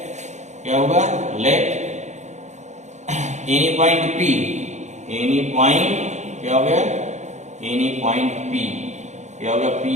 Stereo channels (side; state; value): left; late; 0.34 ms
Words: क्या होगा, let any point P, any point क्या हो गया, एनी पॉइंट पी क्या हो गया,